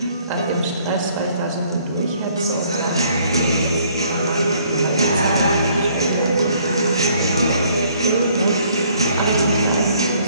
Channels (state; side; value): inverted; both; correlation -0.62